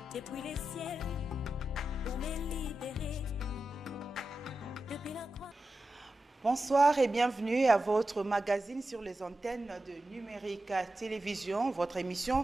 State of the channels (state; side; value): normal; both; correlation 0.91